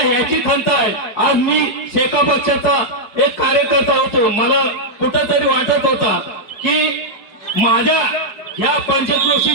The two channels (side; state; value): right; late; 5.0 ms